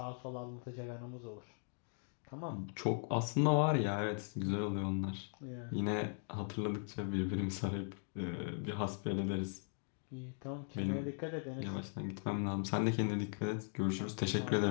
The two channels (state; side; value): silent; right; 52 dB below the other